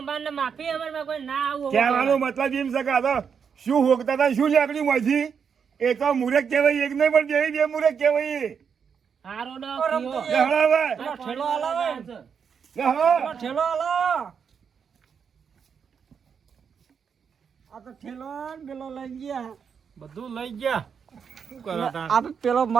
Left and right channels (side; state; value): left; quieter; 6.8 dB